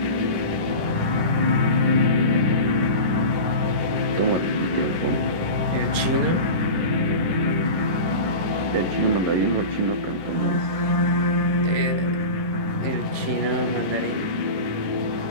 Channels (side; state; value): left; late; 10 ms